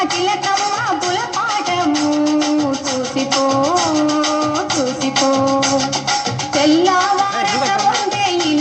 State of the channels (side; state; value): both; identical; correlation 1.00